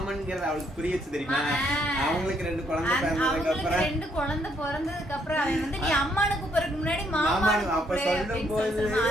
அவளுக்கு புரியுச்சு தெரியுமா. அவங்களுக்கு 2 குழந்தை பிறந்ததுக்கு அப்புறம் அவன் வந்து நீ அம்மானு கூப்பிடுறதுக்கு முன்னாடி மாமானு அப்ப சொல்லும் போது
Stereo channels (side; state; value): both; normal; correlation 0.71